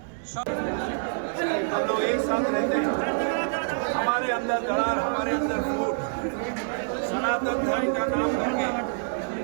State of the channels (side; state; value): left; silent; digital silence